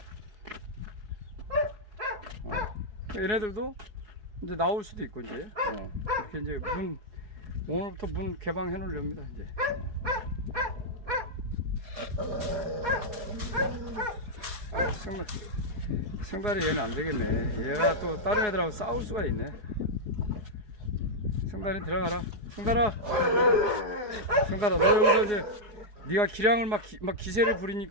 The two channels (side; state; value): left; late; 4.7 ms